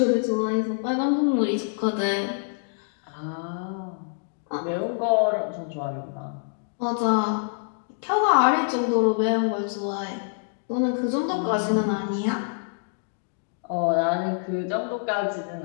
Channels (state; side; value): silent; right; digital silence